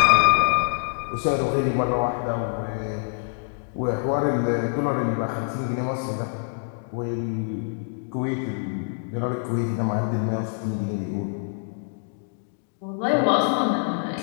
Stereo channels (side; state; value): right; silent; digital silence